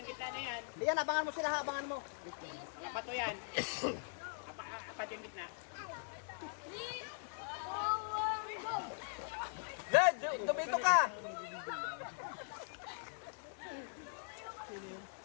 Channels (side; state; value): right; silent; 50 dB below the other